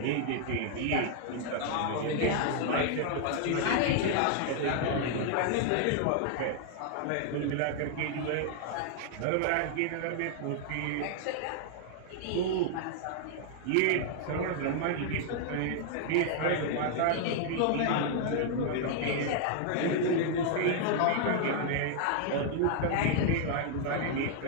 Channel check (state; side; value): different; both; correlation 0.00